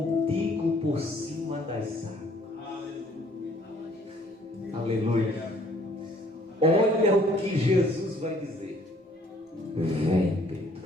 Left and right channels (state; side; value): normal; both; correlation 0.60